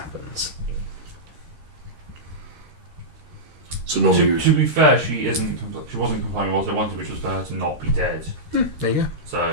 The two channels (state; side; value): late; left; 13 ms